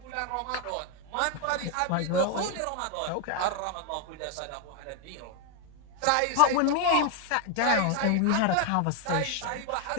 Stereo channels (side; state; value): both; different; correlation 0.00